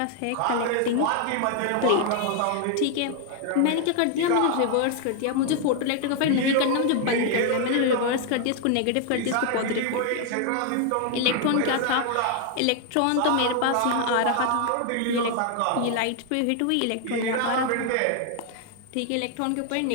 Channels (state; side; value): different; both; correlation 0.00